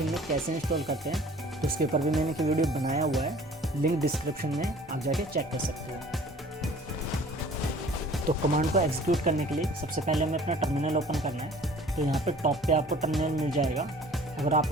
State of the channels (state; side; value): normal; both; correlation 0.49